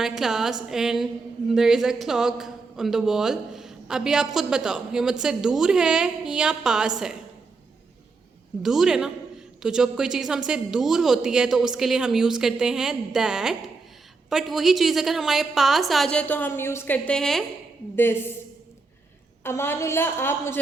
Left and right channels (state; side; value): quieter; left; 4.1 dB